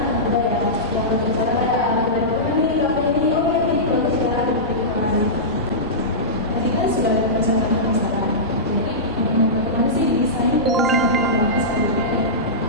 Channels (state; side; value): normal; both; correlation -0.17